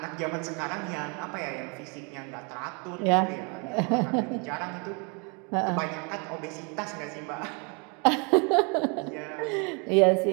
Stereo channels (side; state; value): left; quieter; 33.3 dB